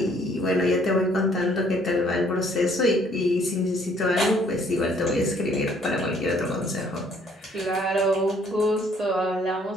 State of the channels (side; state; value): both; normal; correlation 0.63